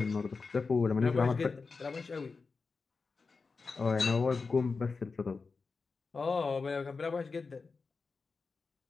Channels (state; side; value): quieter; right; 4.5 dB